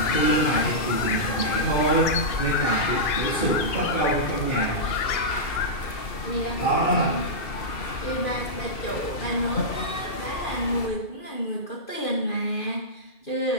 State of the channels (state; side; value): late; right; 2.7 ms